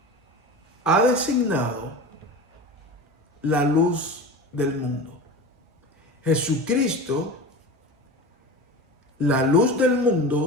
ha designado la luz del mundo. Jesucristo, la luz del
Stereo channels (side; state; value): both; normal; correlation 0.31